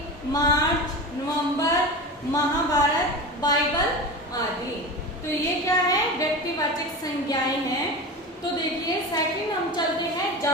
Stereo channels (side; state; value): both; normal; correlation 0.28